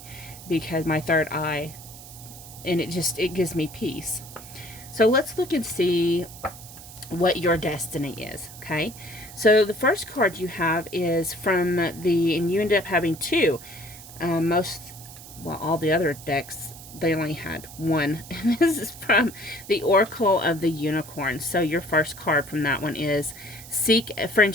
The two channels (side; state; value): right; noise; hiss, 16 dB below the sound